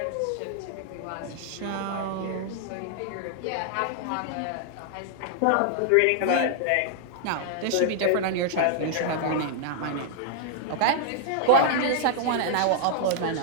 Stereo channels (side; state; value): both; different; correlation 0.00